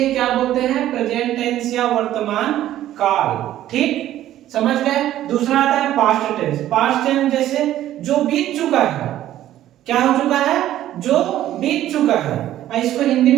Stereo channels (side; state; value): left; quieter; 13.0 dB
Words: क्या बोलते हैं? प्रेजेंट टेंस या वर्तमान काल। ठीक, समझ गए? दूसरा आता है पास्ट टेंस। पास्ट टेंस जैसे जो बीत चुका है। क्या हो चुका है? जो बीत चुका है। इसको हिंदी